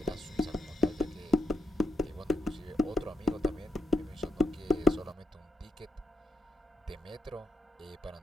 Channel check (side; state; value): both; normal; correlation 0.80